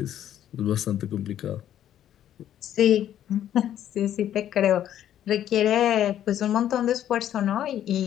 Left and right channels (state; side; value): quieter; right; 11.0 dB